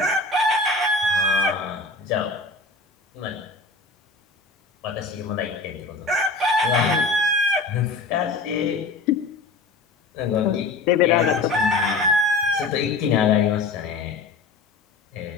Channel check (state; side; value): quieter; right; 3.5 dB